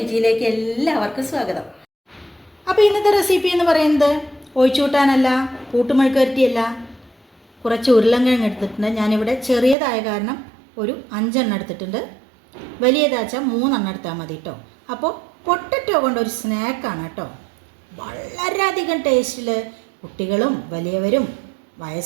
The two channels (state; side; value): drops out; left; at 9.8 s